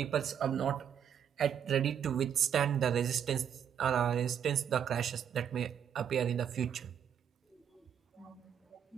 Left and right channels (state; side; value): quieter; left; 8.6 dB